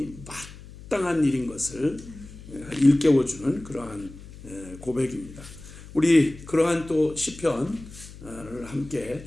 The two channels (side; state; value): left; noise; hum, 17 dB below the sound